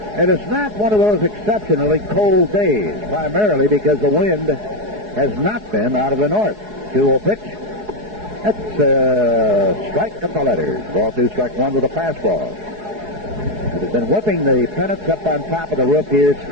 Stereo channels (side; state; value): left; late; 4.7 ms